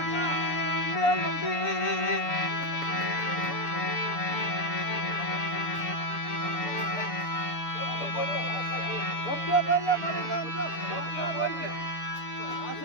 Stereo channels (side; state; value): right; late; 7.0 ms